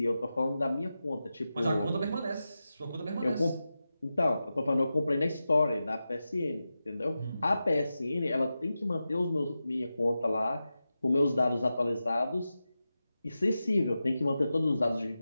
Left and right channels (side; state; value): both; inverted; correlation -0.92